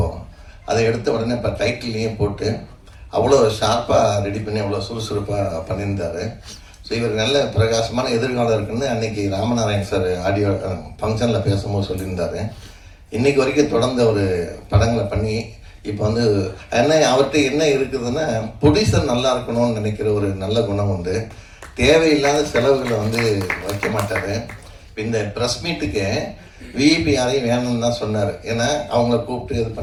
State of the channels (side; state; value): both; identical; correlation 1.00